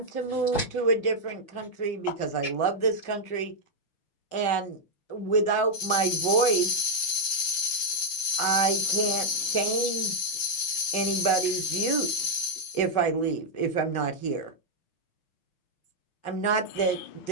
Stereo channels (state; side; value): late; right; 6.4 ms